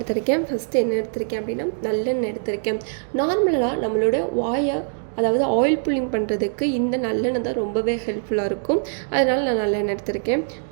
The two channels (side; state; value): left; silent; digital silence